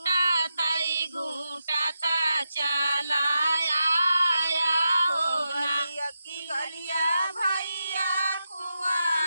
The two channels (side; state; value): both; inverted; correlation -0.87